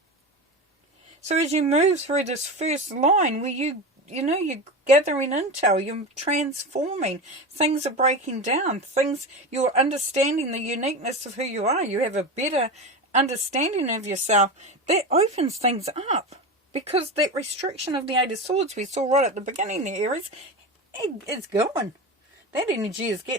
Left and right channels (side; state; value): both; normal; correlation 0.23